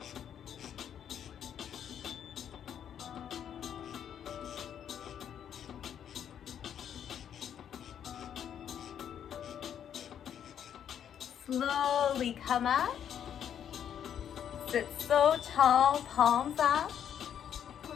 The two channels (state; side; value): quieter; right; 9.1 dB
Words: Slowly come up. Sit so tall, palms up.